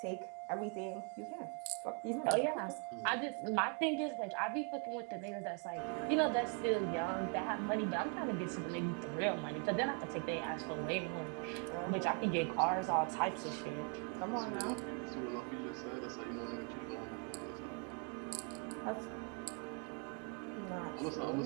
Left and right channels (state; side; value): quieter; left; 36.9 dB